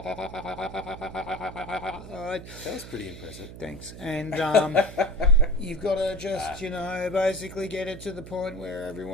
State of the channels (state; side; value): noise; right; hum, 13 dB below the sound